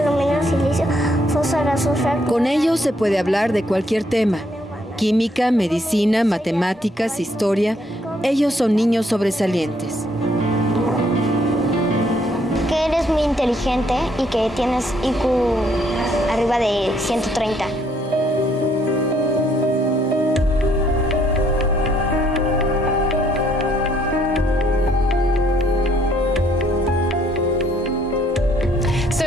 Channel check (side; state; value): both; normal; correlation 0.69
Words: silicio, fósforo, azufre. Con ellos se puede hablar de cualquier tema. Química, medicina, matemáticas, historia. Ellos son niños sobresalientes. Que eres muy inteligente y que tienes IQ arriba de 130. So